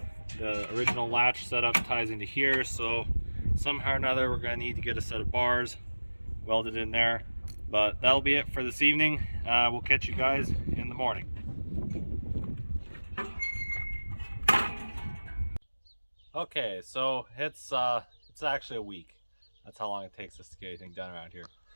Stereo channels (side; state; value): both; inverted; correlation -1.00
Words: the original latch setup ties into here, so somehow or another we're going to need to get a set of bars welded in there. But that'll be it for this evening. We'll catch you guys in the morning. Okay, so it's actually a week. That's how long it takes us to get anything done around here.